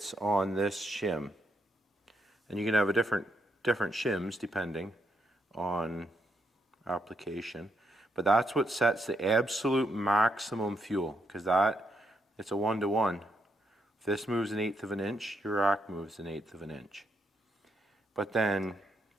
on this shim. And you can have a different shims depending on application. But that's what sets the absolute maximum fuel, because it's a 1-to-1. If this moves 1/8 of an inch, your rack moves 1/8 of an inch. But then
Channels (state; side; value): normal; both; correlation 0.78